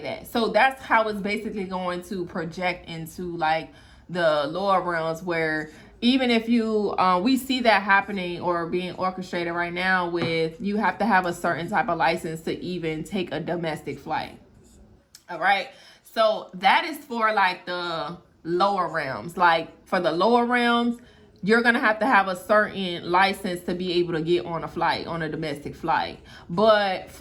that. So that's how it's basically going to project into like the lower realms, where even if you we see that happening or being orchestrated right now with, you have to have a certain type of license to even take a domestic flight. All right. So that is for like the lower realms. Like for the lower realms, you're going to have a certain license to be able to get on a flight, on a domestic flight. But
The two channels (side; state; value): both; identical; correlation 1.00